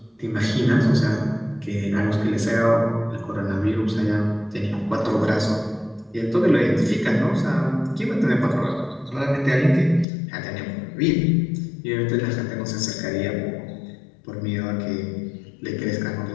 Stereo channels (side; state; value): right; drops out; at 10.1 s